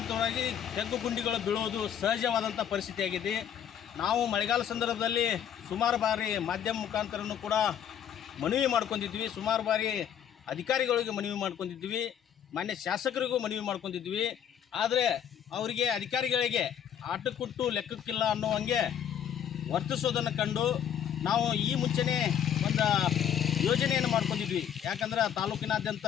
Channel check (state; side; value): quieter; right; 9.2 dB